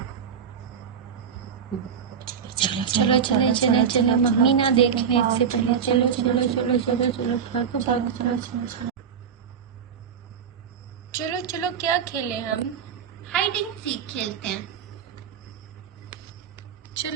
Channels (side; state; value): left; quieter; 7.3 dB